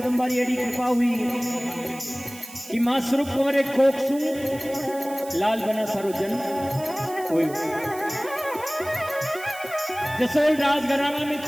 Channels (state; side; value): noise; right; hiss, 16 dB below the sound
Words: री एडी कृपा हुई कि मां स्वरूप कंवर एक कोक सु लाल बना सारो जन्म हुई। जसोल राजघराना में